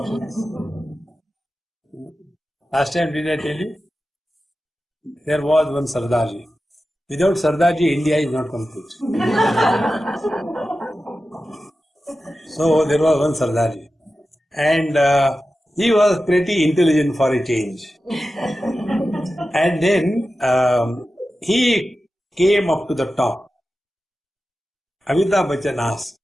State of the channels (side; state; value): both; normal; correlation 0.93